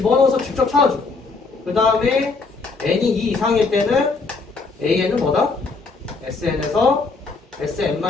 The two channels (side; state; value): right; quieter; 4.1 dB